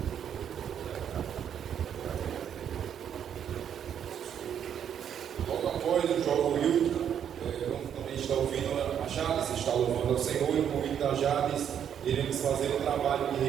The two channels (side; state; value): left; quieter; 8.9 dB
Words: Logo após o jovem Will, também está ouvindo a Jades, está louvando ao Senhor, e com o convite da Jades, iremos fazer um trabalho de